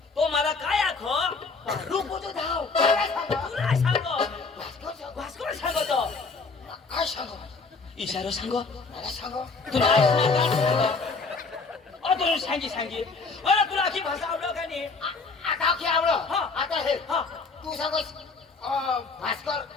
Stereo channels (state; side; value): quieter; right; 4.3 dB